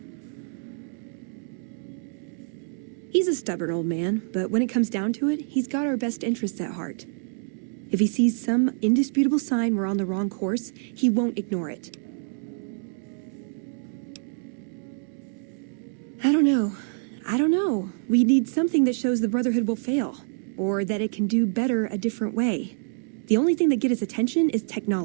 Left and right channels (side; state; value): left; silent; digital silence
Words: He's a stubborn old man, but when it comes down to it, he's got our best interests at heart. If he sees some indisputable sign we're on the wrong course, he won't ignore it. I don't know. We need something that shows the Brotherhood will fail, or that it can do better a different way. The only thing that gets his attention is